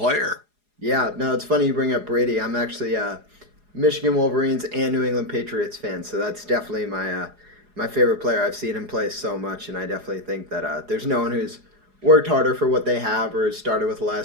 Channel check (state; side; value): late; left; 4.8 ms